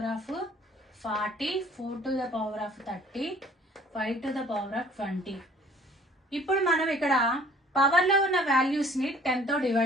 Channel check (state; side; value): normal; both; correlation 0.54